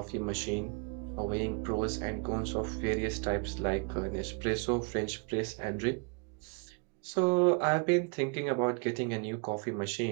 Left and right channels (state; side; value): quieter; left; 35.2 dB